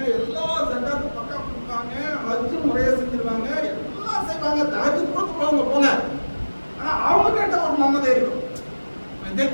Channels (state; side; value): inverted; both; correlation -1.00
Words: எல்லா ஜக்காத்தும் பக்கா கொடுப்பாங்க, ஹஜ்ஜு முறையா செஞ்சிருவாங்க, எல்லாம் செய்வாங்க, தஹஜ்ஜுத் கூட தொழுவாங்க போங்க. ஆனா அவங்க கிட்ட ஒரு மமதை இருக்கும்.